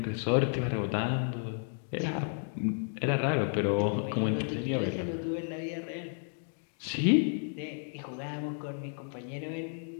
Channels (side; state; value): right; silent; 56 dB below the other